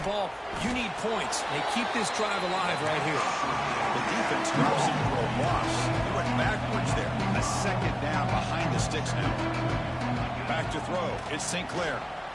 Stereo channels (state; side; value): identical; both; correlation 1.00